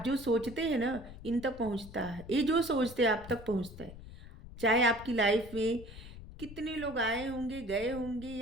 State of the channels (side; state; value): left; noise; rumble, 15 dB below the sound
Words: जो सोचते हैं ना इन तक पहुंचता है, ये जो सोचते हैं आप तक पहुंचता है। चाहे आपकी लाइफ में कितने लोग आए होंगे गए होंगे